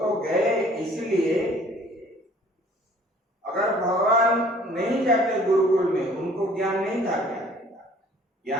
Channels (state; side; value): normal; both; correlation 0.54